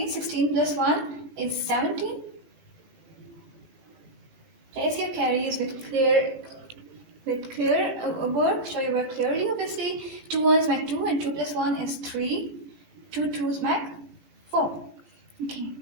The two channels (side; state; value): left; late; 18 ms